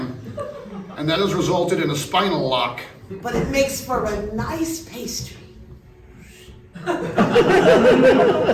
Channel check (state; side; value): identical; both; correlation 1.00